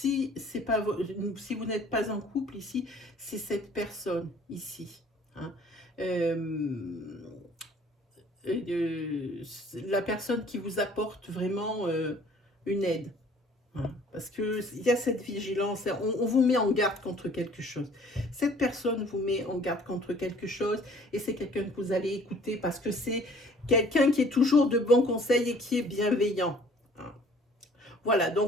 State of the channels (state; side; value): normal; both; correlation 0.54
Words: vous n'êtes pas en couple ici, c'est cette personne ici. Hein. La personne qui vous apporte vraiment une aide. hein, parce qu'il y a cette vigilance, on vous met en garde contre quelque chose. Cette personne vous met en garde contre quelque chose et c'est quelqu'un que vous allez écouter parce que c'est quelqu'un qui est toujours de bons conseils et qui est bienveillant. Hein. Voilà,